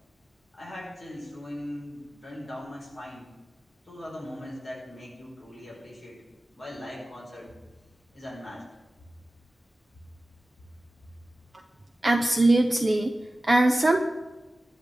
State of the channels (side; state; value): both; normal; correlation 0.96